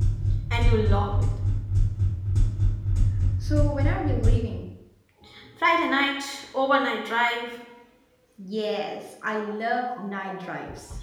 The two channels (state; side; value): identical; both; correlation 1.00